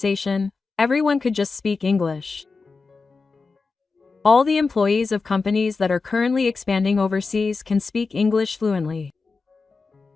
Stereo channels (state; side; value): quieter; right; 4.3 dB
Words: everyone could just speak English. All the employees of companies that are currently expanding overseas can speak English fluently.